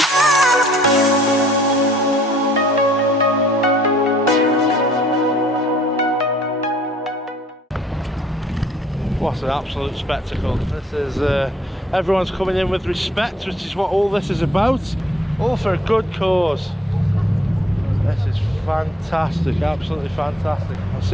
What an absolute spectacle. This is everyone's coming in with respect, which is what all this is about, all for a good cause. This is fantastic, absolutely fantastic. I'll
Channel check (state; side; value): normal; both; correlation 0.60